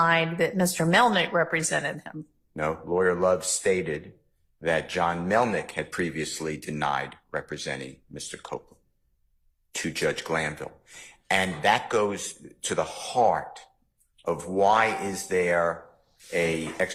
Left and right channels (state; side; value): identical; both; correlation 1.00